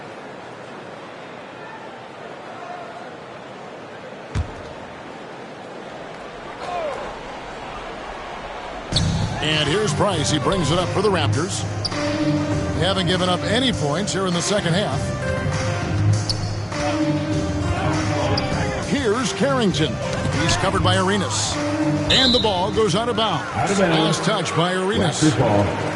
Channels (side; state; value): both; identical; correlation 1.00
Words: And here's Price. He brings it up for the Raptors. They haven't given up any points here in the second half. Here's Carrington. He's covered by Arenas. And the ball goes out of bounds. Last touch by Arenas.